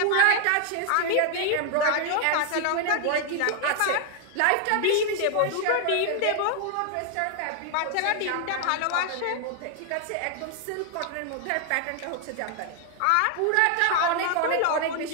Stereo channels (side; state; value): both; different; correlation 0.00